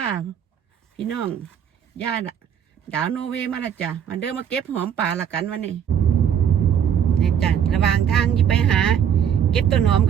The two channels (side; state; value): left; quieter; 8.6 dB